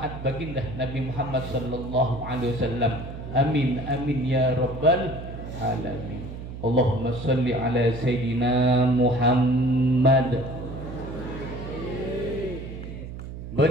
baginda Nabi Muhammad sallallahu alaihi wasallam. Amin amin ya rabbal alamin. Allahumma salli ala sayyidina Muhammad.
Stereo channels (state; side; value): noise; right; hum, 10 dB below the sound